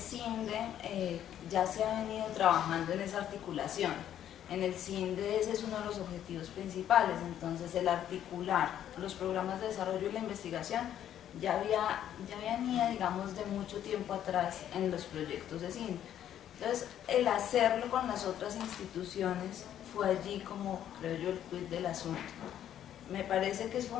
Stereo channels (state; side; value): quieter; right; 10.7 dB